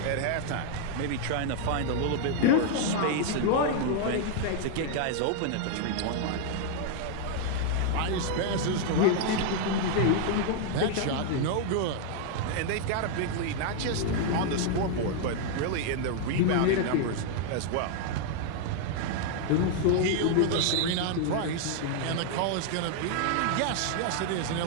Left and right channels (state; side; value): different; both; correlation 0.00